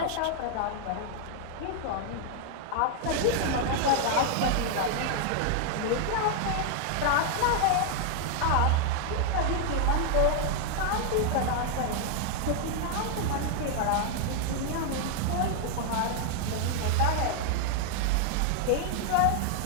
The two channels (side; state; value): both; different; correlation 0.00